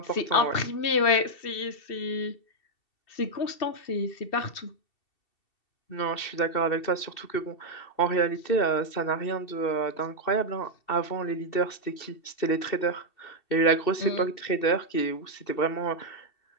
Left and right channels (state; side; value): late; right; 2.7 ms